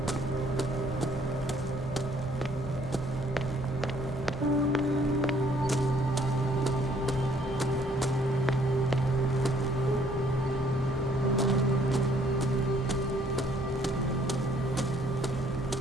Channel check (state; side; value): normal; both; correlation 0.63